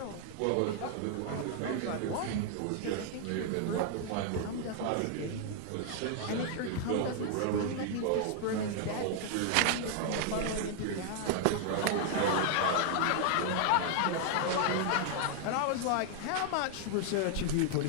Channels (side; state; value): both; different; correlation 0.00